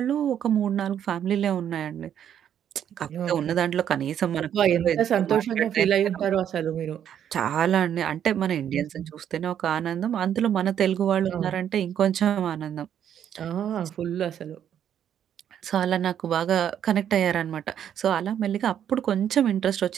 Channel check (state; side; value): quieter; left; 9.5 dB